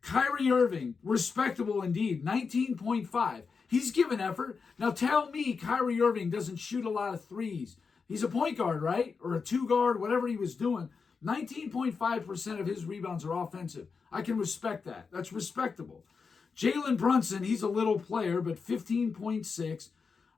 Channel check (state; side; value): quieter; right; 5.2 dB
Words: Kyrie Irving, respectable indeed, 19.5. He's given effort. Now tell me Kyrie Irving doesn't shoot a lot of threes. He's a point guard, right? Or a two guard, whatever he was doing. 19.5% of his rebounds are offensive. I can respect that. That's respectable. Jalen Brunson, he's a little player, but 15.6.